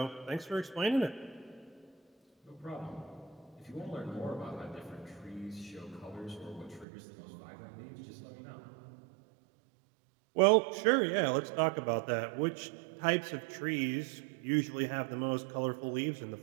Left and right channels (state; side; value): drops out; left; at 6.9 s